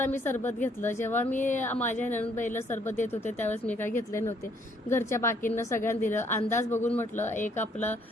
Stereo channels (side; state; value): both; normal; correlation 0.66